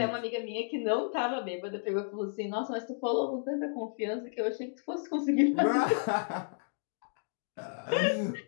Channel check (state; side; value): silent; right; digital silence